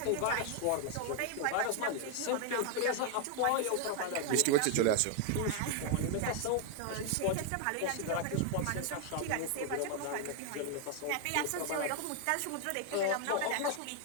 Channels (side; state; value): both; different; correlation 0.00